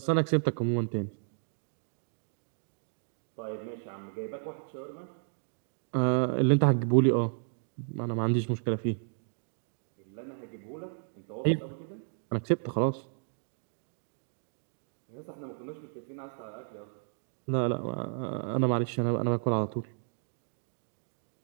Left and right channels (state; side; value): silent; left; digital silence